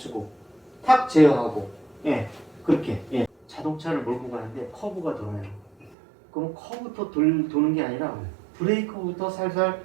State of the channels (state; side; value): drops out; left; at 6.0 s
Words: 탁 제어하고 그렇게 자동차를 몰고 가는데 커브가 돌아요. 그럼 커브부터 도는 게 아니라 브레이크부터 살살